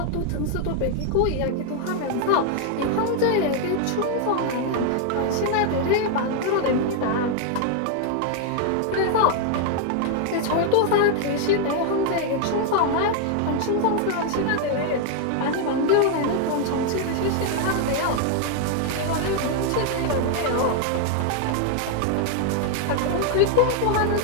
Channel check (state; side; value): different; both; correlation 0.00